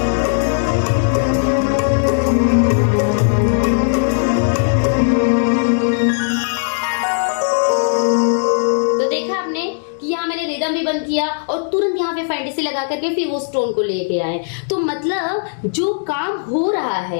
बंद किया और तुरंत यहाँ पे फैंटेसी लगा करके फिर वो स्टोन को लेके आए। तो मतलब जो काम हो रहा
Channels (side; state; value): right; silent; digital silence